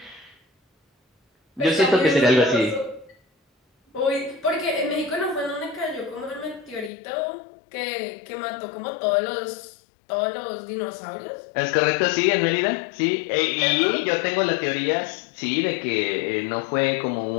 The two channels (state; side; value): drops out; right; at 6.9 s